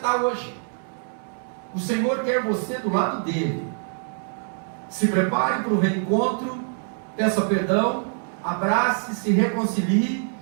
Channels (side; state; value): left; silent; 58 dB below the other